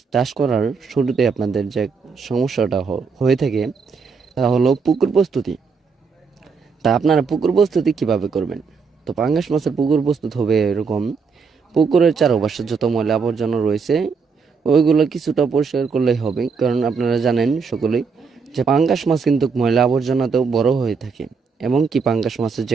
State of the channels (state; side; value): quieter; left; 5.3 dB